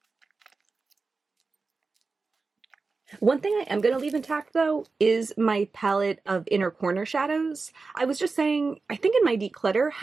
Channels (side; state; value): left; quieter; 4.2 dB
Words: One thing I am going to leave intact though is my palette of inner corner shadows. I was just saying, I think in my declutter,